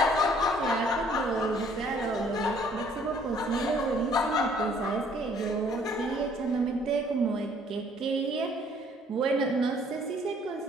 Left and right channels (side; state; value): both; normal; correlation 0.60